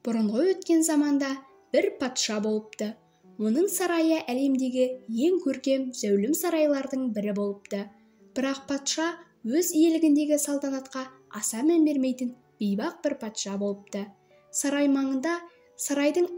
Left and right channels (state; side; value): identical; both; correlation 1.00